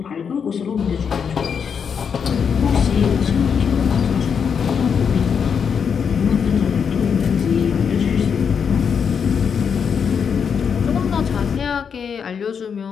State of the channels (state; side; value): quieter; right; 6.8 dB